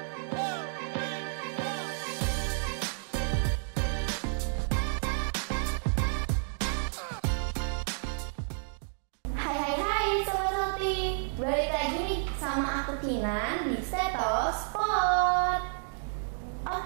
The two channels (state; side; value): silent; left; digital silence